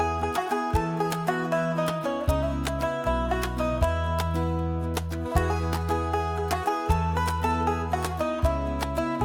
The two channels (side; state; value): both; identical; correlation 1.00